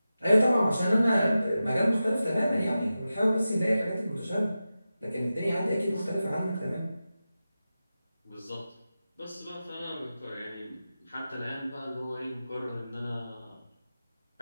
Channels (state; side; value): inverted; both; correlation -0.93